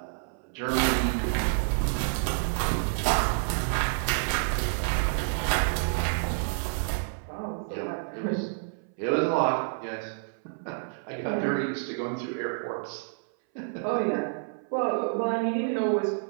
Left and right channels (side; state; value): left; silent; 59 dB below the other